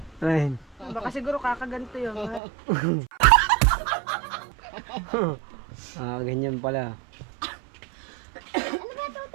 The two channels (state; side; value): drops out; left; at 2.4 s